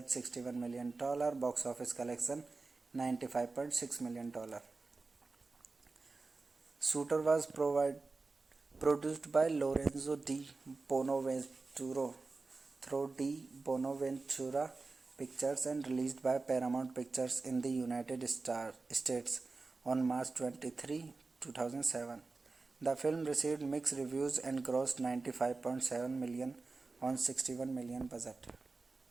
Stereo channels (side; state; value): left; quieter; 3.8 dB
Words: $61 million. Box office collection $95.6 million. Shooter was produced by Lorenzo Di Bonaventura through Di Bonaventura Pictures and released by Paramount Pictures in the United States on March 23, 2007. The film received mixed reviews and grossed $95.7 million on $61 million budget.